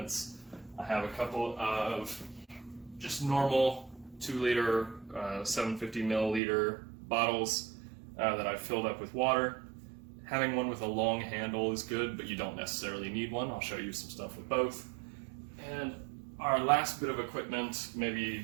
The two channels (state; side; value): drops out; left; at 6.4 s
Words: I have a couple of just normal 2-liter, 750 milliliter bottles that I've filled up with water. Having one with a long handle is good, but you don't necessarily need one. I'll show you some stuff with both. And our last bit of equipment,